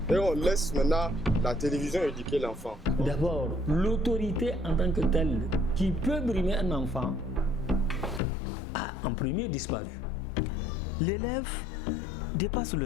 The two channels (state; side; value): drops out; right; at 8.2 s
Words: Et on laisse maintenant la télévision éduquer l'enfant. D'abord, l'autorité en tant que telle qui peut brimer un enfant a en premier disparu. L'élève dépasse